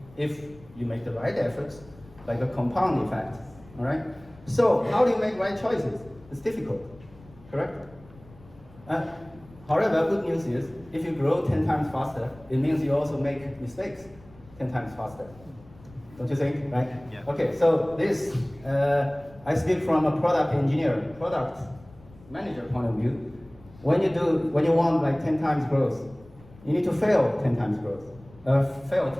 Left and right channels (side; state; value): left; noise; rumble, 23 dB below the sound